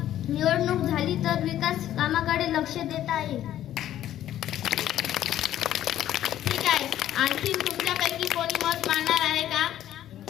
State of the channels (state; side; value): quieter; right; 12.2 dB